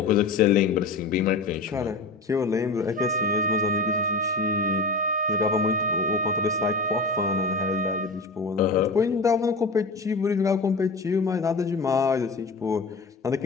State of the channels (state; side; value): quieter; right; 3.5 dB